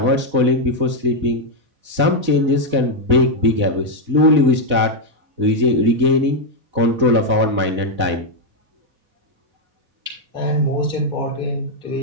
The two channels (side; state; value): left; late; 4.0 ms